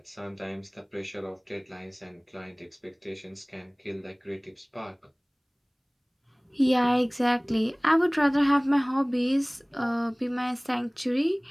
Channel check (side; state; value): both; identical; correlation 1.00